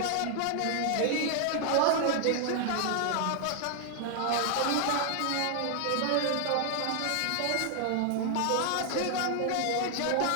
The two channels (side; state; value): both; different; correlation 0.00